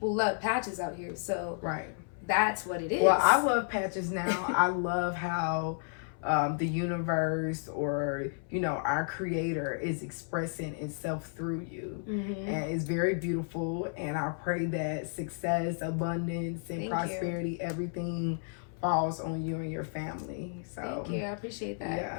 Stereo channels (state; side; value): silent; right; 56 dB below the other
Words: love Patches out here, so that's what it is. Well, I love Patches now. I love how... the universe or our creator is expressing itself through you, and it's very beautiful. And I pray that success, abundance, and prosperity, everything falls on you and your family. So thank you. I appreciate that.